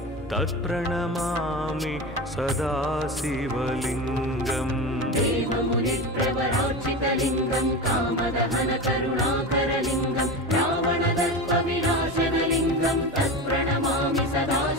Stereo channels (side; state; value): right; noise; hum, 23 dB below the sound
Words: तत्प्रणमामि सदा शिवलिङ्गम् देवमुनिप्रवरार्चितलिङ्गं कामदहनकरुणाकरलिङ्गं रावणदर्पविनाशनलिङ्गं तत्प्रणमामि सदा